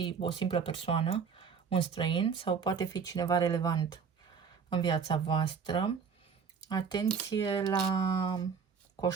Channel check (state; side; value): quieter; left; 6.2 dB